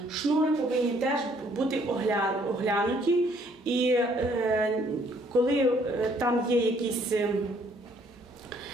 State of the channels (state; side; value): normal; both; correlation 0.64